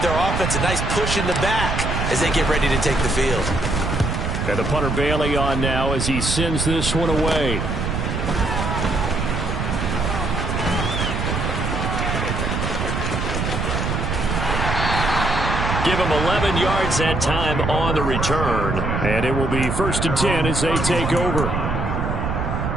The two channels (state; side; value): noise; right; rumble, 1 dB below the sound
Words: their offense a nice push in the back as they get ready to take the field. And the punter Bailey on now as he sends this one away. Give him 11 yards that time on the return. And it will be 1st and 10 as they take over.